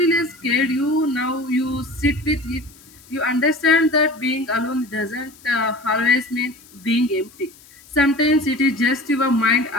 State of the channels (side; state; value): left; noise; hiss, 25 dB below the sound